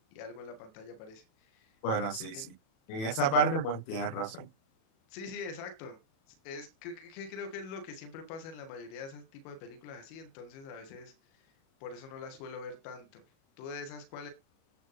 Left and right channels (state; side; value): late; right; 37 ms